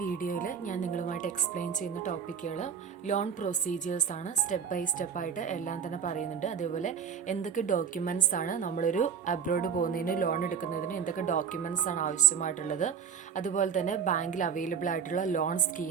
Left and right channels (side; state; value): left; quieter; 7.2 dB